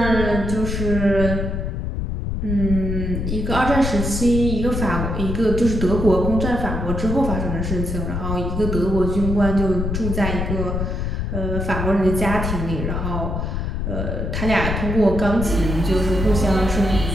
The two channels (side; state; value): left; noise; rumble, 2 dB below the sound